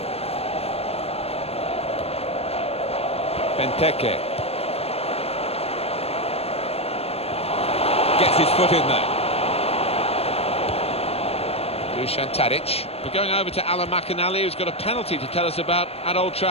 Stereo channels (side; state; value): right; late; 0.29 ms